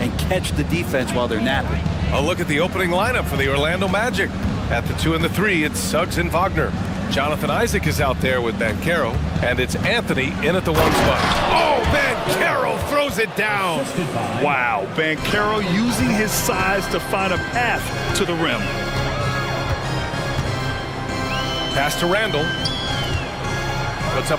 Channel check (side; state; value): both; identical; correlation 1.00